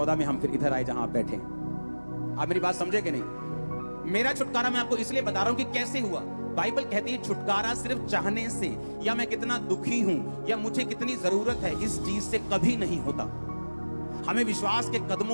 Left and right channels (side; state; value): both; inverted; correlation -1.00